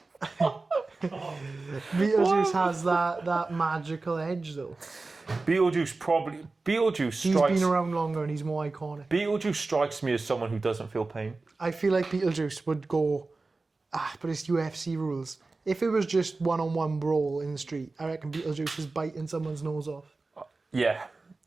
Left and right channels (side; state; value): left; quieter; 3.6 dB